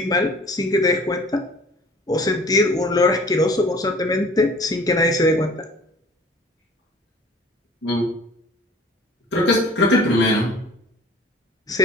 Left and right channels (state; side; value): normal; both; correlation 0.49